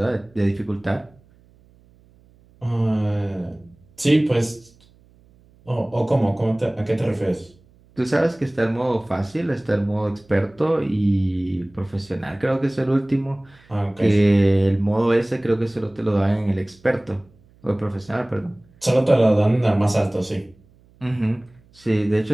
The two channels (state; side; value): noise; right; hum, 30 dB below the sound